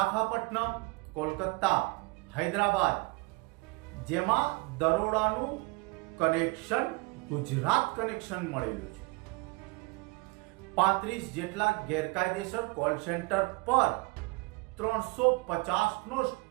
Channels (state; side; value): quieter; left; 26.6 dB